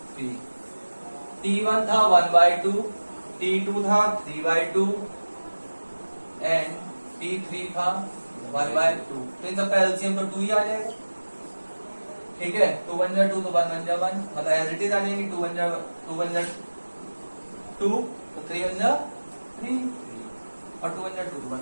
T1 था 1/2, T2 था 3/2 एंड T3 था 1/2। तो इन सबका एलसीएम तो 2 ही आ जाएगा। ठीक है, 2 1 जा 2 तो 1 1 जा 1, मतलब एज इट इज आ जाएंगे। 2 1 जा 2 तो 3 1 जा 3 और 2 1 जा 2 तो 1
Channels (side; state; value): both; inverted; correlation -1.00